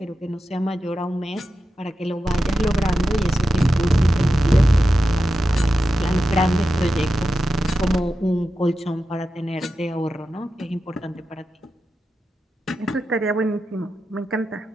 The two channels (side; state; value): both; normal; correlation 0.91